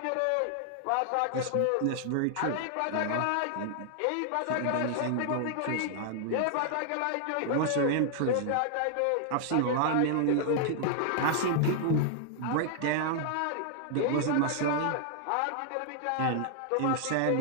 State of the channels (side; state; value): both; different; correlation -0.01